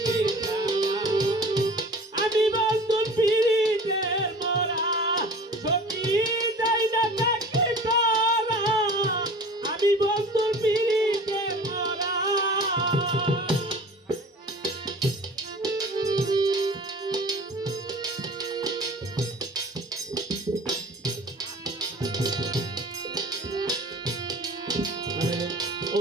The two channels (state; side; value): normal; both; correlation 0.42